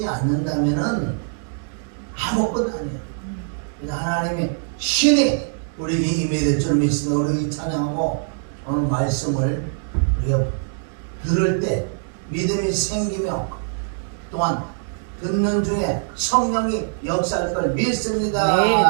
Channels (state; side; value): silent; left; digital silence